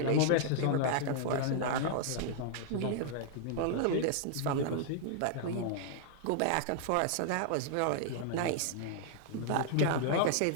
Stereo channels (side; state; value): both; different; correlation -0.01